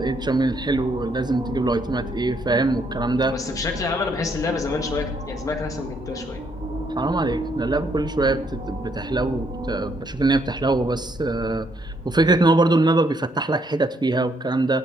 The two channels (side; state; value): both; normal; correlation 0.71